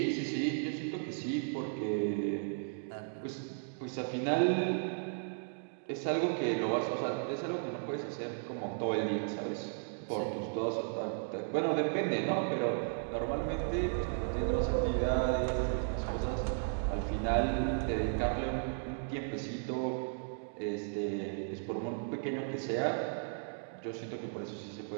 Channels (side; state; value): left; silent; digital silence